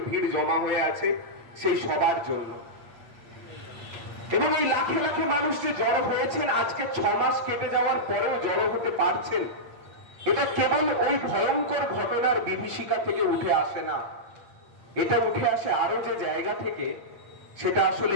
ভিড় জমা হয়ে আছে সেই সবার জন্য। এবং এই লাখে লাখে মানুষ যে জড়ো হয়েছেন, আজকে 6 মাস কেটে যাওয়ার পরেও জড়ো হতে পারছেন, এটা কেবল ওই ভয়ঙ্কর ঘটনার বিভীষিকা থেকে উঠে আসে না, এটা উঠে আসে আরো যে জায়গা থেকে, সেটা আসলে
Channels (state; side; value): late; left; 8.6 ms